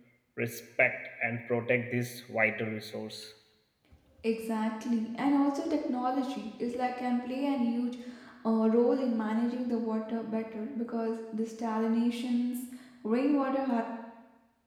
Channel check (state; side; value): identical; both; correlation 1.00